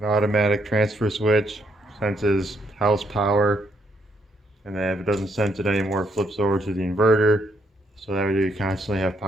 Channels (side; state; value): both; normal; correlation 0.74